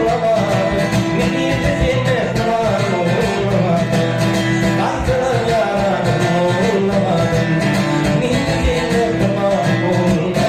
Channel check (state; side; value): identical; both; correlation 1.00